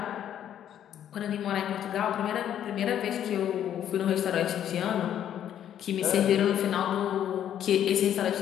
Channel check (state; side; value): quieter; right; 10.4 dB